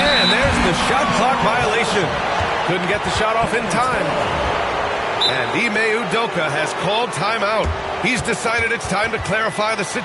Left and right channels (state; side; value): identical; both; correlation 1.00